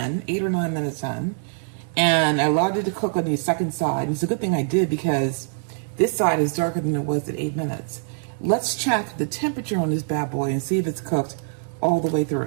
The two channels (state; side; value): silent; left; digital silence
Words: 8 or 9 minutes in, and I allowed it to cook on the second side. It's a good thing I did because this side is darker than it was at 8 minutes. Let's check the temperature on this bad boy and see if it's cooked all the way